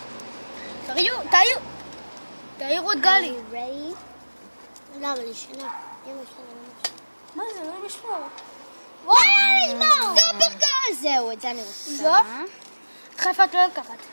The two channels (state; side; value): inverted; both; correlation -1.00